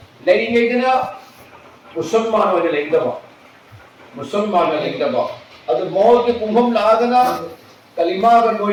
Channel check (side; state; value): both; identical; correlation 1.00